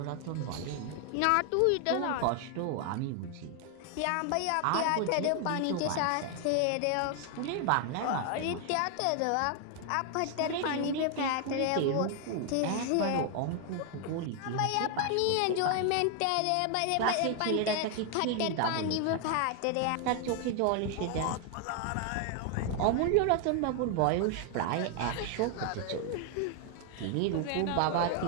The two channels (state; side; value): different; both; correlation 0.00